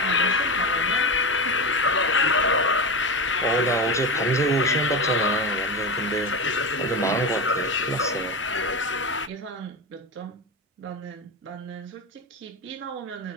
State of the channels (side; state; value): both; normal; correlation 0.20